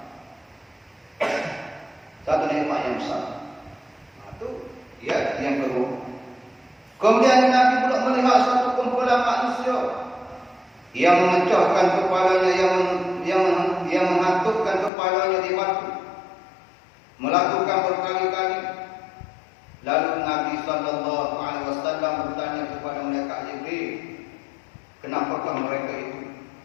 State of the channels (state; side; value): drops out; right; at 14.9 s